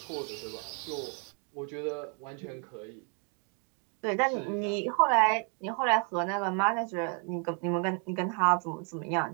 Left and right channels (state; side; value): quieter; left; 39.7 dB